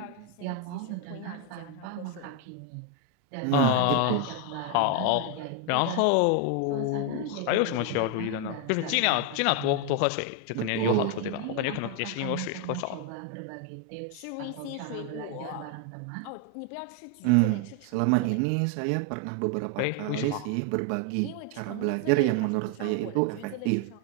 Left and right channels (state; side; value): different; both; correlation 0.01